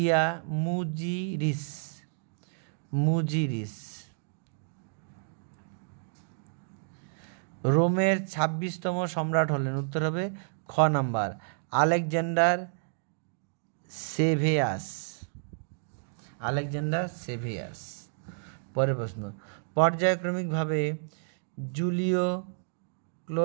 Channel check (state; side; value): silent; left; digital silence